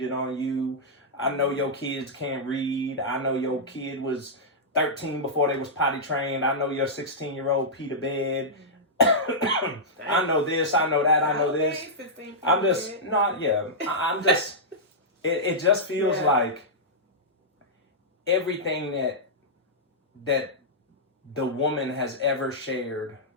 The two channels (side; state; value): both; normal; correlation -0.11